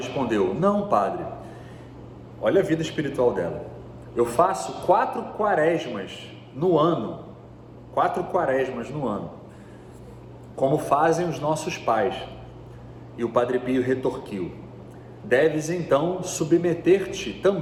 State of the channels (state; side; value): identical; both; correlation 1.00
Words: não, padre. Olha a vida espiritual dela. Eu faço 4 quaresmas no ano, como fazem os nossos pais. E o Padre Pio retorquiu: deves então submeter-te